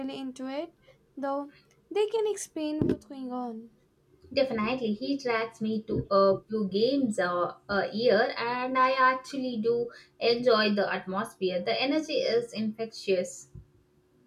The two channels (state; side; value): identical; both; correlation 1.00